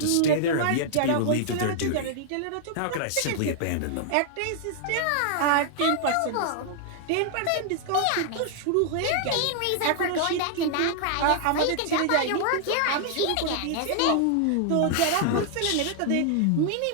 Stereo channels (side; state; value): both; different; correlation 0.00